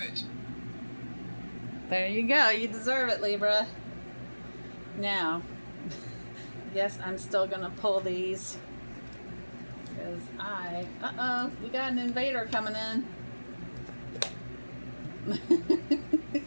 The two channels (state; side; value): inverted; both; correlation -1.00